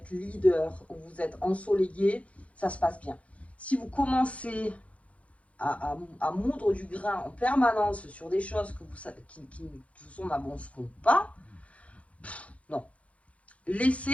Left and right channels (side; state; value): right; late; 0.064 ms